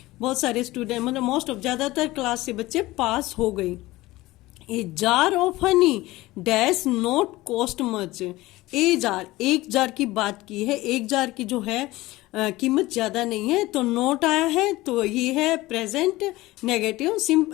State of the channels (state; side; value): quieter; right; 18.8 dB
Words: बहुत सारे स्टूडेंट मतलब मोस्ट ऑफ, ज्यादातर क्लास से बच्चे पास हो गई। ए jar of Honey dash not cost much. A jar, एक जार की बात की है, एक जार की जो है कीमत ज्यादा नहीं है, तो नोट आया है, तो ये है present negative.